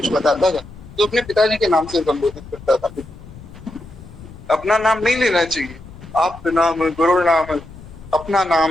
बताता था तो अपने पिताजी के नाम से संबोधित करता था। अपना नाम नहीं लेना चाहिए, आप नाम, गुरु नाम, अपना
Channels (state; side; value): noise; left; rumble, 18 dB below the sound